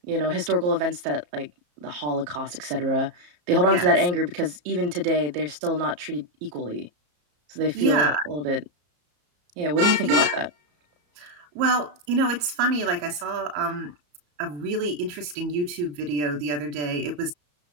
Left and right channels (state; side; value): late; left; 34 ms